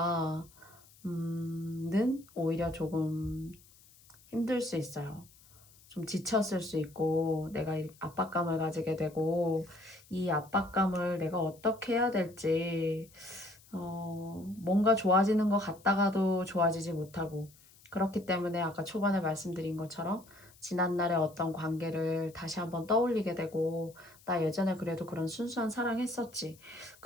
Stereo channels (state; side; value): noise; left; hiss, 26 dB below the sound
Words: 는 오히려 조금 힘들 수 있어요. 좀 지쳤을 수 있고, 내가 이 압박감을 가지게 되고, 이 압박감을 내가 어떻게 해야 될지, 뭔가 좋아지는 것 같다가도 좋아지지 못하고, 그렇기 때문에 아까 초반에 말씀드린 것처럼 지난날의 어떤 관계를 다시 한번 떠올리게 되고, 나 예전에 그래도 그런 순수한 사랑했었지.